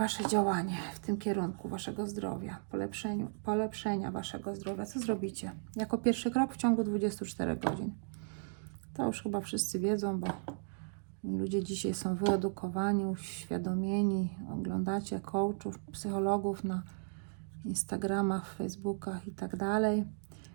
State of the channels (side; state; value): left; silent; digital silence